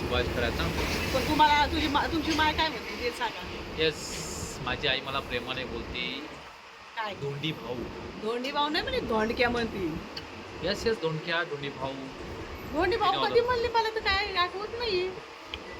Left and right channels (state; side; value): identical; both; correlation 1.00